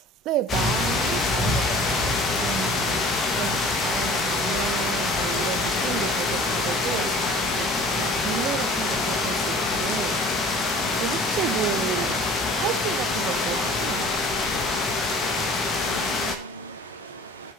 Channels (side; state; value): both; normal; correlation 0.47